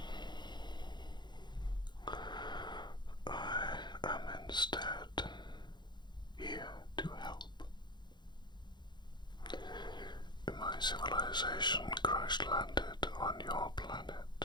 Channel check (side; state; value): right; late; 0.21 ms